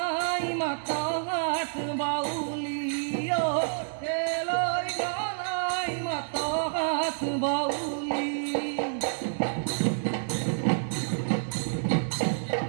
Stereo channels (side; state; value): left; silent; digital silence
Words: মাতা হাত বাউলি ও কেলই ঘনাই মাতা হাত বাউলি